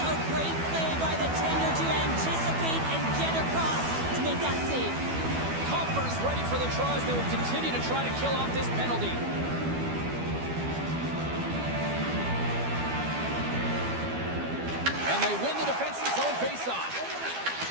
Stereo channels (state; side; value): late; left; 12 ms